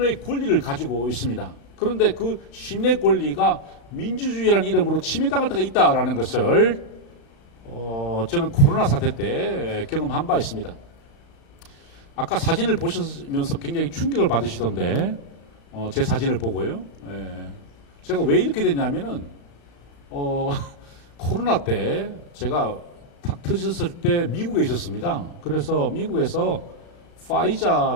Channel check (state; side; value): late; right; 35 ms